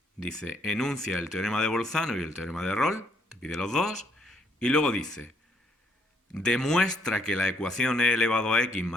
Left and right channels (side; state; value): both; normal; correlation 0.69